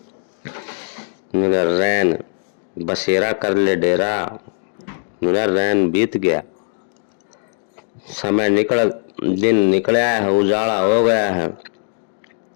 मेरा रैन बसेरा कर ले डेरा, मेरा रैन बीत गया, समय निकल, दिन निकला है, उजाला हो गया है।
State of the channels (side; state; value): right; silent; 66 dB below the other